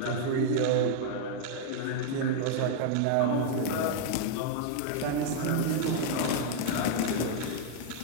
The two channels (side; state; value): both; different; correlation -0.01